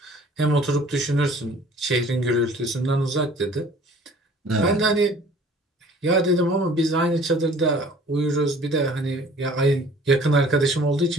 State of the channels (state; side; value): normal; both; correlation 0.51